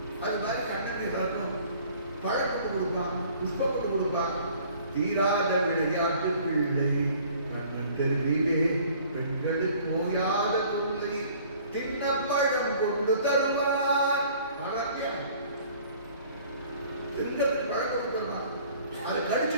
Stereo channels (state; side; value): inverted; both; correlation -0.53